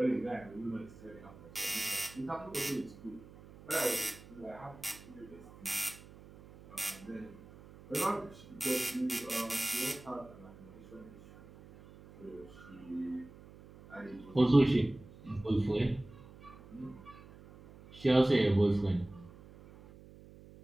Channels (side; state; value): right; noise; hum, 20 dB below the sound